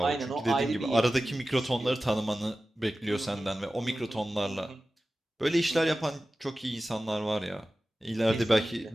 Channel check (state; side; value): normal; both; correlation 0.95